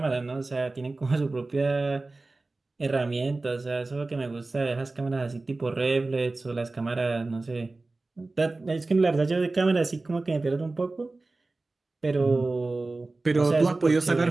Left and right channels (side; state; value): left; quieter; 3.3 dB